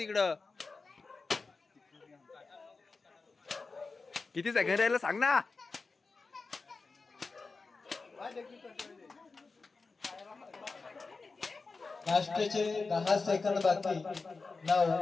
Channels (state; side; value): quieter; right; 4.1 dB